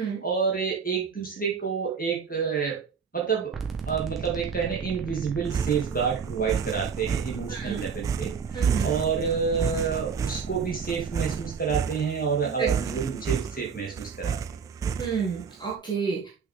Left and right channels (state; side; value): quieter; left; 6.0 dB